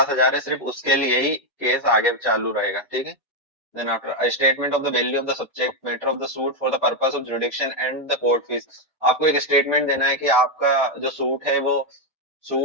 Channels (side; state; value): both; normal; correlation 0.03